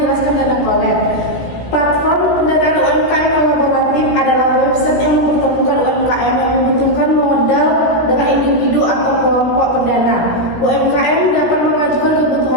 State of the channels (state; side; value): late; right; 17 ms